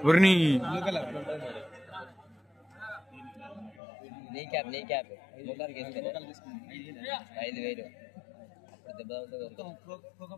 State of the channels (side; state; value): right; drops out; at 3.8 s